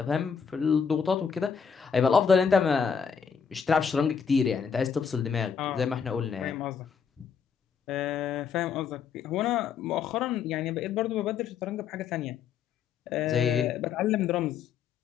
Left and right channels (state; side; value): quieter; right; 6.6 dB